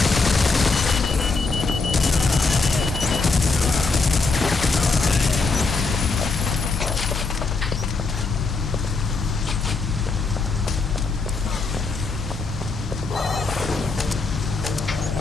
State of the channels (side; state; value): right; quieter; 4.0 dB